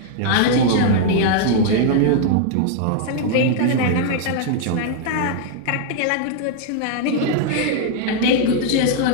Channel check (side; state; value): both; different; correlation 0.00